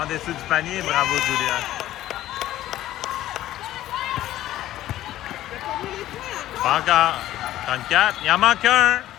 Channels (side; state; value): right; quieter; 14.0 dB